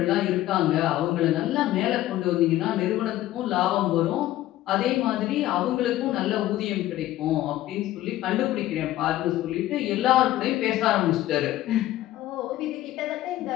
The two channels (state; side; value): quieter; right; 14.8 dB